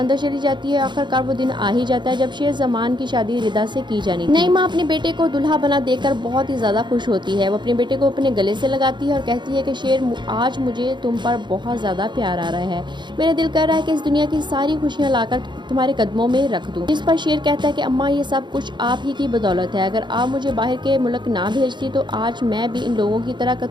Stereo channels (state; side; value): late; left; 0.22 ms